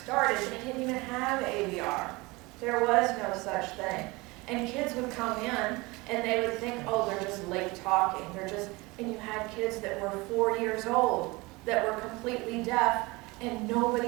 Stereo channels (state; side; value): quieter; left; 23.7 dB